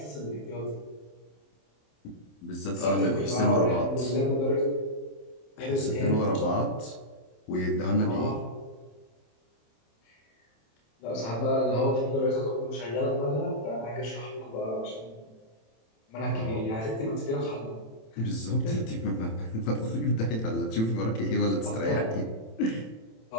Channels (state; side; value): late; right; 27 ms